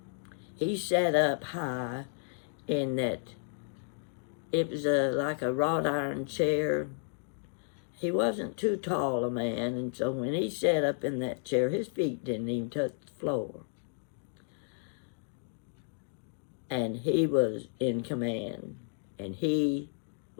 He sat up high in that, it was like a wrought iron chair. He wasn't too tall a man, and so when he sat up in that chair, his feet didn't even touch the floor. And he was in command, and he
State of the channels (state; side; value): silent; right; digital silence